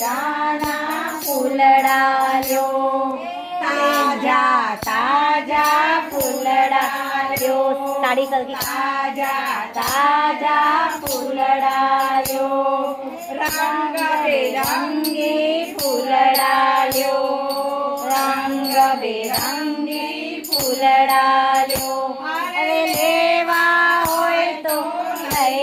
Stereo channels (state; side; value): identical; both; correlation 1.00